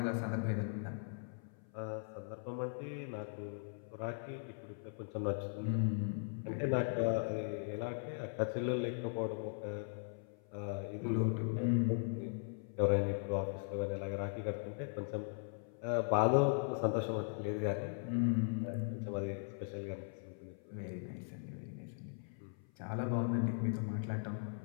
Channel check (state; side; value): silent; right; 52 dB below the other